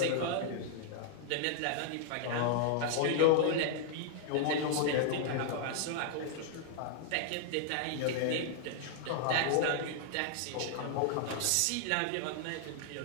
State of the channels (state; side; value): different; both; correlation -0.01